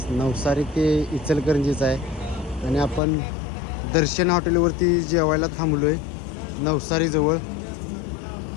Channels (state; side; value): drops out; right; at 3.0 s